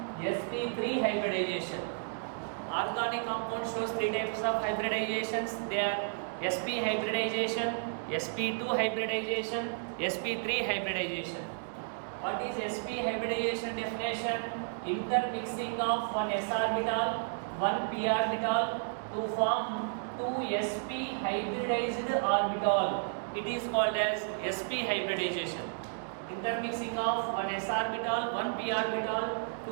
sp3 hybridization. Organic compound shows three types of hybridizations. They are sp hybridization, sp2 hybridization, sp3 hybridization. What is sp hybridization definition? Intermixing of one s orbital, one p orbital to form two sp hybridized orbital. It is called as sp hybridization. Intermixing of one s orbital, one p orbital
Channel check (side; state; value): left; silent; digital silence